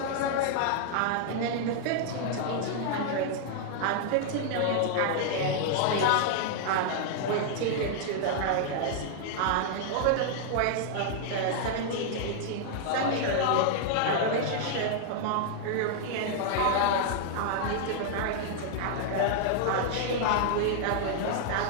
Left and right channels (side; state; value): both; different; correlation -0.01